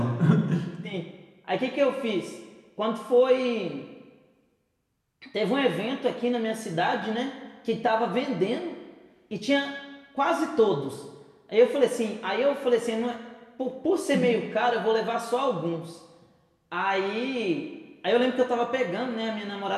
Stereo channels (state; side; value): identical; both; correlation 1.00